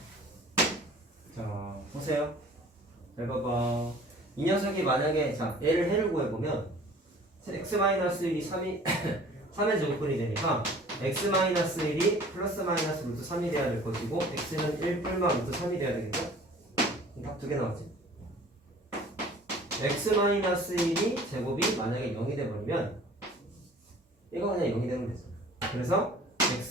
자, 보세요. 잘 봐봐. 이 녀석이 만약에, 자, 얘를 해를 구해보면, x-1이 3의 제곱근이 되니까, x-1이 플러스 마이너스 루트 3이 돼야 될 것이고, x는 1 뿔마 루트 3이 돼야 되겠죠? 답 두 개 나왔지? x-1이 제곱이 만약에 0이 돼버리면 이거 그냥 0이 되면 되죠. 그래서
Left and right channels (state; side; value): normal; both; correlation 0.49